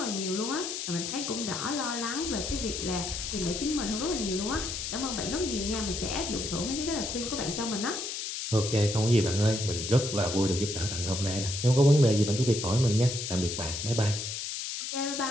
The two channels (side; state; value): left; noise; hiss, 4 dB below the sound